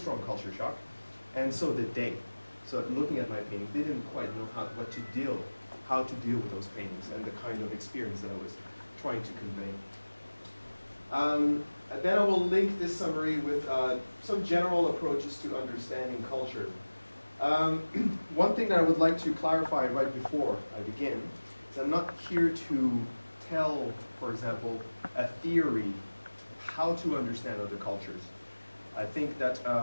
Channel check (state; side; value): inverted; both; correlation -1.00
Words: culture shock, and so did they. So looking at my painting, they didn't quite know how to deal with those paintings and the kind of experience that I was trying to convey. Then I will link this summary with some general approaches to understanding culture. One thing that I would like to clarify right before I begin is I'm not here to tell, for example, a theory how to understand other cultures. I think that